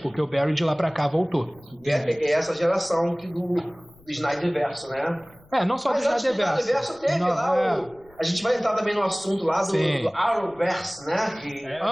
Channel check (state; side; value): noise; left; rumble, 29 dB below the sound